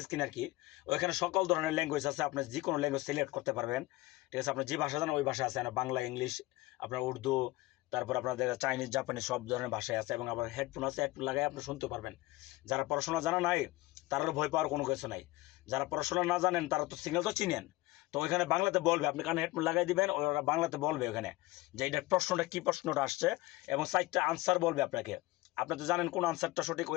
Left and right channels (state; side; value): quieter; right; 19.6 dB